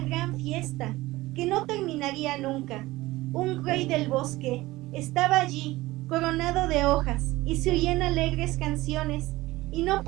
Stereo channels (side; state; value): left; quieter; 18.7 dB